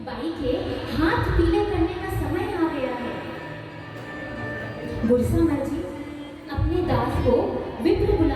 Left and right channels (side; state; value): both; identical; correlation 1.00